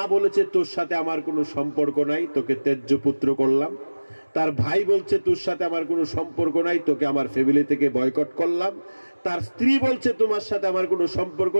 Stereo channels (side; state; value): both; inverted; correlation -1.00